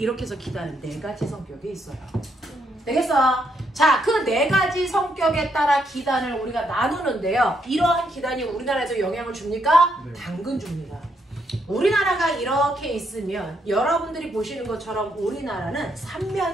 해서 기단은 네 가지 성격이 있어요. 되겠어? 자, 그 네 가지 성격에 따라 기단을 우리가 나누는데요. 이러한 기단이 우리나라에서 영향을 줍니까? 네. 당근 줍니다. 우리나라가 이렇게 있으면 여러분들이 보시는 것처럼 우리나라는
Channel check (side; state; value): both; normal; correlation 0.76